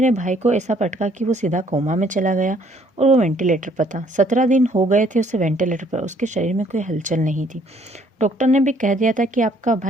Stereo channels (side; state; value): both; normal; correlation 0.63